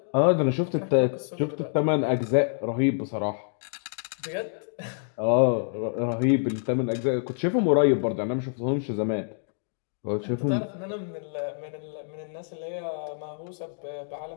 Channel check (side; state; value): right; silent; digital silence